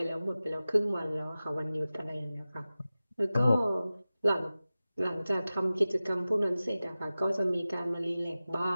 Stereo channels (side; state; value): both; inverted; correlation -0.96